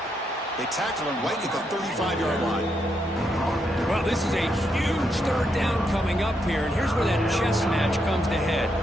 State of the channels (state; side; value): normal; both; correlation 0.80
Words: They tackle him right at the 35-yard line. Well, this is a huge 3rd down coming up here, and here's where that chess match comes to head.